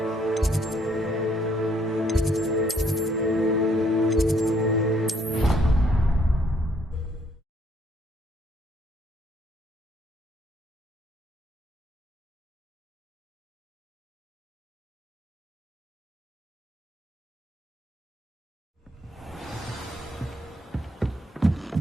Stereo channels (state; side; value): normal; both; correlation 0.67